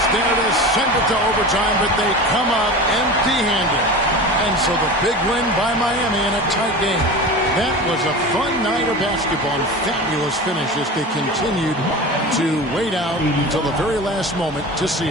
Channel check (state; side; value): normal; both; correlation 0.31